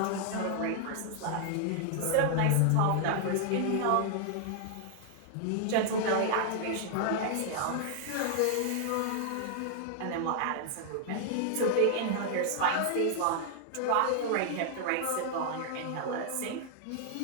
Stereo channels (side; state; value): both; different; correlation 0.00